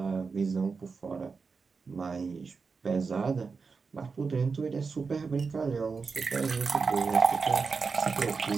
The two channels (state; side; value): quieter; left; 4.9 dB